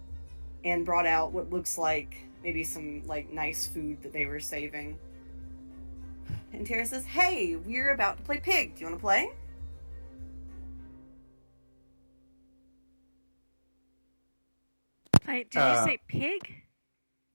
and brought out what looks like maybe some like nice food that they were saving. And Tara says, "Hey, we're about to play Pig. Do you want to play?" Did you say pig?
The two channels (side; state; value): both; inverted; correlation -1.00